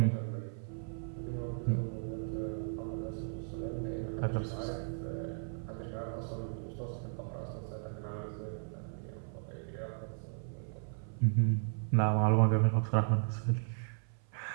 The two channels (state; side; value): silent; left; 54 dB below the other